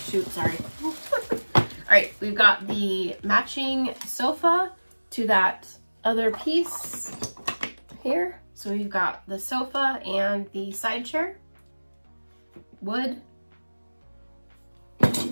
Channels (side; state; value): both; inverted; correlation -1.00